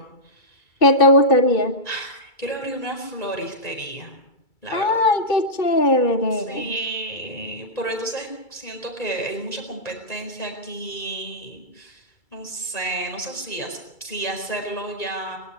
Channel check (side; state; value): right; late; 2.3 ms